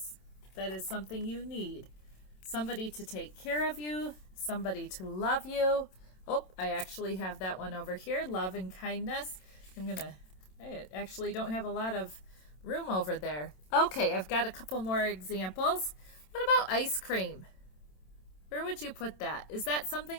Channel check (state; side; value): late; right; 27 ms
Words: that is something you need. Somebody to take care of you, somebody to love you. Oh, I actually have that one over here, love and kindness. I actually don't have a lot of room over there. Okay, I've got a couple more examples. What about ice cream? Where would you put that? Is that